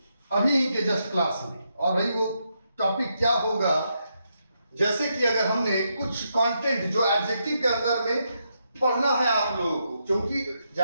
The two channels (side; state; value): both; inverted; correlation -0.81